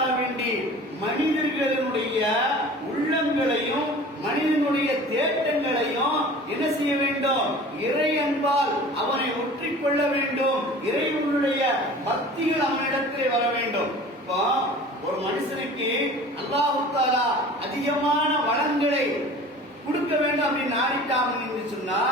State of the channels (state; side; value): normal; both; correlation 0.42